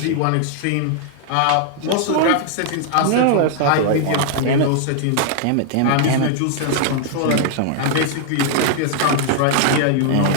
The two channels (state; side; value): different; both; correlation 0.00